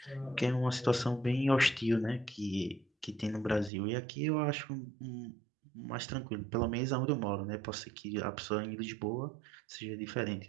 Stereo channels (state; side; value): drops out; left; at 3.7 s